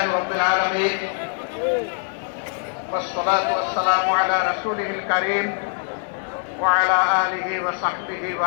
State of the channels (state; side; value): silent; right; 64 dB below the other